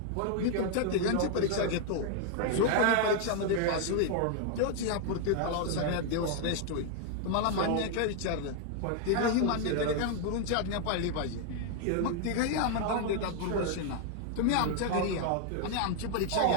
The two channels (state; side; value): different; both; correlation 0.00